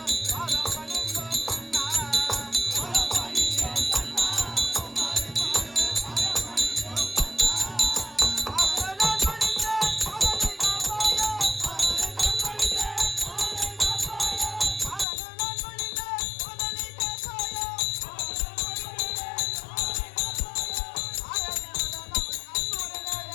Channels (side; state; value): right; drops out; at 15.1 s